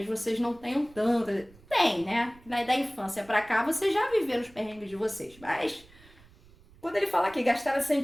vocês não tenham tanto. Tem, né? Da infância para cá, vocês já viveram os perrengues de vocês. Mas, quando ele fala que gastaram essas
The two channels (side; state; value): right; noise; rumble, 25 dB below the sound